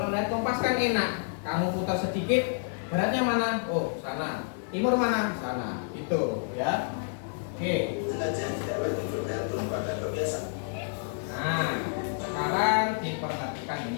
lihat kompas kan enak. Kamu putar sedikit, baratnya mana? Oh, sana. Timur mana? Sana. Itu, ya. Oke. Nah, sekarang diperhatikan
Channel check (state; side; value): silent; right; digital silence